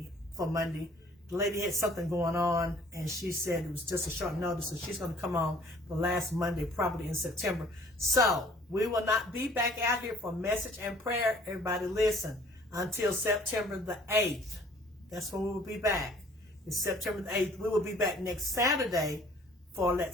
for Monday. The lady had something going on, and she said it was just a short notice, so she's going to come on the last Monday, probably in September. So we will not be back out here for message and prayer. Everybody listen, until September the 8th. That's when we will be back. It's September the 8th. We will be back next Saturday for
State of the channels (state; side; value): normal; both; correlation 0.55